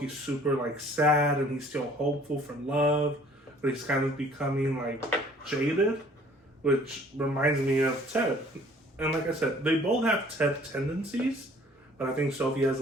super, like, sad and he's still hopeful for love, but he's kind of becoming, like, jaded, which reminds me of Ted. And like I said, they both have Ted tendencies, but I think Sophie has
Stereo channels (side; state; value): both; normal; correlation 0.55